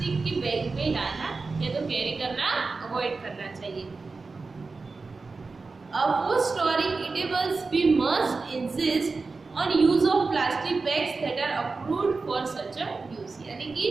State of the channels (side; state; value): left; quieter; 4.1 dB